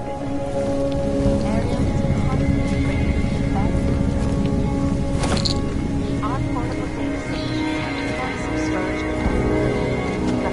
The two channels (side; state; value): both; identical; correlation 1.00